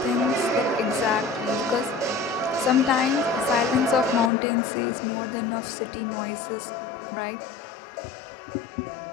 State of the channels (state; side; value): drops out; right; at 4.3 s